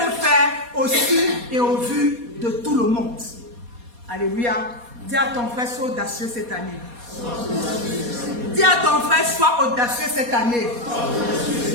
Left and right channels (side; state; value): left; late; 4.2 ms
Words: faire au su et au vu de tout le monde. Alléluia. Dis à ton frère, sois audacieux cette année. Dis à ton frère, sois audacieux cette année.